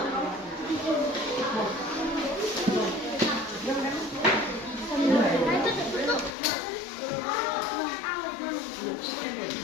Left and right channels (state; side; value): drops out; right; at 6.3 s